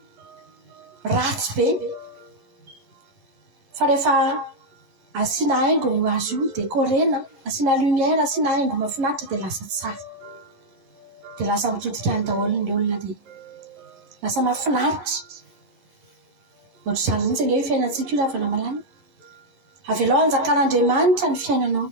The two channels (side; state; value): left; late; 11 ms